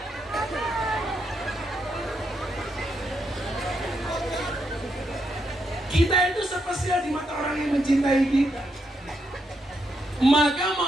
Kita itu spesial di mata orang yang mencintai kita. Maka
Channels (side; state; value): both; normal; correlation 0.80